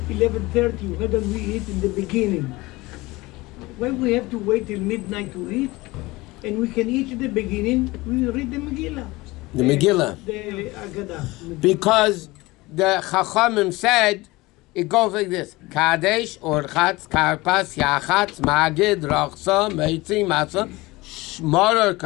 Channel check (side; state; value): right; quieter; 21.2 dB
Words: 11:30? Why don't we eat in the beginning? Why we have to wait till midnight to eat? And we can eat at the beginning. We read the Megillah. The Megillah. The Agadah. Because the Chachamim said it goes like this: Kadesh, Orchatz, Karpas, Yachatz, Magid, Rachsa, Meitzi, Matzah, Shmaror,